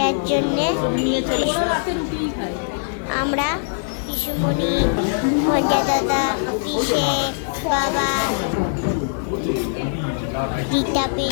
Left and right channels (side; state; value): right; silent; digital silence